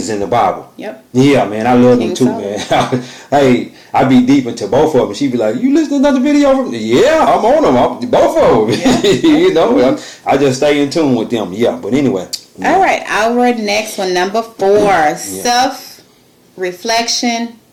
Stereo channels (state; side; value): identical; both; correlation 1.00